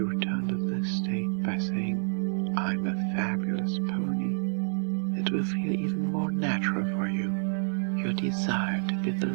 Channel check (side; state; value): left; silent; digital silence